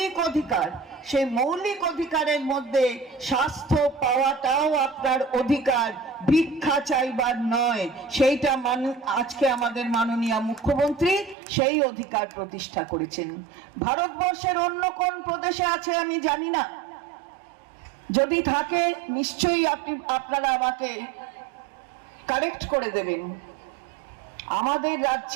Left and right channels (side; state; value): left; drops out; at 11.4 s